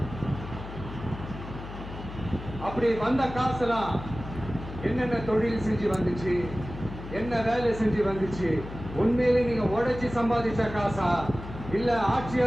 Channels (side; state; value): left; noise; hum, 11 dB below the sound